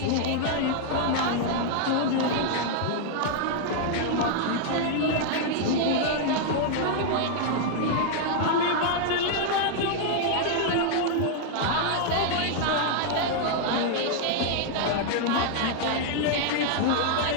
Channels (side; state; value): both; different; correlation 0.00